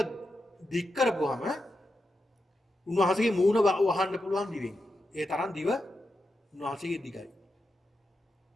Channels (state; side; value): normal; both; correlation 0.88